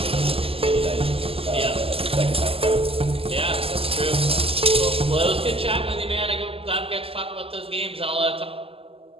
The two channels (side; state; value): left; late; 0.28 ms